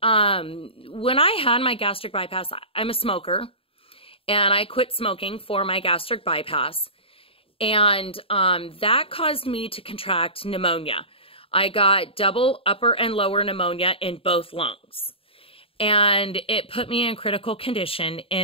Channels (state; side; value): late; right; 0.27 ms